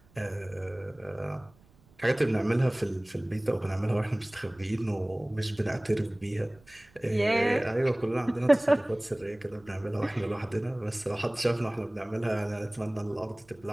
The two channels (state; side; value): noise; right; rumble, 29 dB below the sound